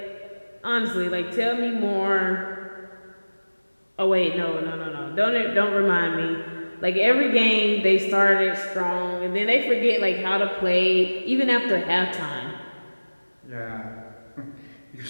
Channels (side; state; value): both; inverted; correlation -1.00